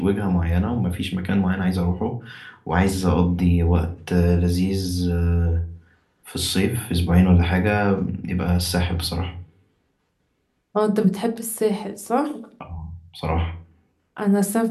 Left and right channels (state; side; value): identical; both; correlation 1.00